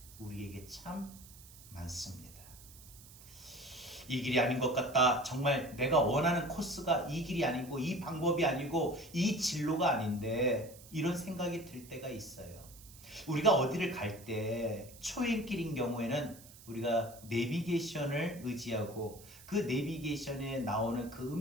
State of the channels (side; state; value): right; noise; hiss, 20 dB below the sound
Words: 우리에게 참 많습니다. 이 길이 아닌 것 같다. 정말 내가 원하는 코스가 이 길이 아니고 이 방법이 아니고 이 진로가 아닌데 이런 생각이 들 때가 있어요. 우리가 어디를 갈 때 초행길인 경우에는 우리가 내비게이션을 의지하고 그 내비게이션에 나오는 그